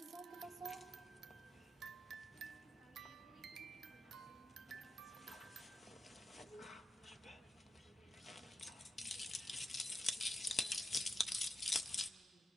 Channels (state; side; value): normal; both; correlation 0.87